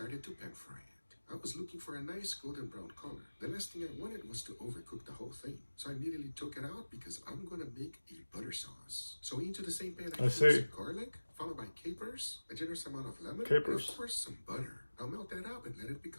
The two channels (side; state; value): both; inverted; correlation -1.00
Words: to pan fry it. I was looking for a nice golden brown color. The last thing I wanted was to overcook the whole thing. So I immediately took it out because I'm gonna make a butter sauce. So into the same pan I threw some garlic, followed by capers, a generous amount of lemon, and of course some butter. Now melt that up and let it